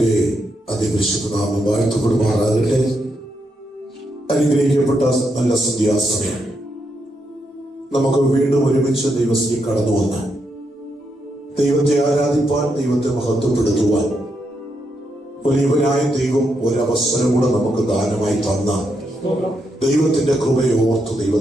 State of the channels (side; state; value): both; normal; correlation 0.81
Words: അതിപരിശുദ്ധ നാമം വാഴ്ത്തപ്പെടുമാറാകട്ടെ. അനുഗ്രഹിക്കപ്പെട്ട നല്ല സന്ധ്യാസമയം നമുക്ക് വീണ്ടും ഒരുമിച്ച് ദൈവത്തിൽ കടന്നു വന്ന് ദൈവത്തെ ആരാധിപ്പാൻ, ദൈവത്തെ മഹത്വപ്പെടുത്തുവാൻ വലിയവനായ ദൈവം ഒരവസരം കൂടെ നമുക്ക് ദാനമായി തന്ന ദൈവത്തിന്റെ കൃപയെ ഓർത്ത്